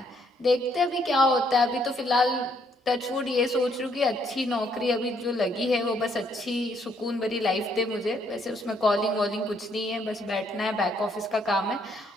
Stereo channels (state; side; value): normal; both; correlation 0.70